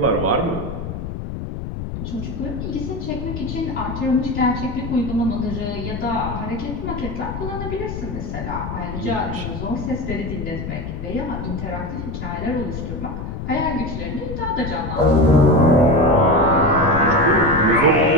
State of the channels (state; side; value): noise; left; rumble, 7 dB below the sound